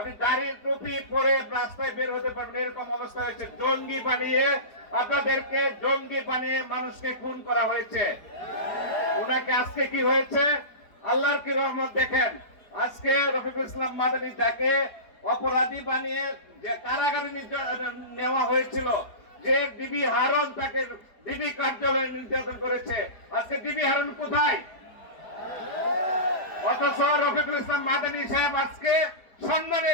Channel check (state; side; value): late; right; 4.6 ms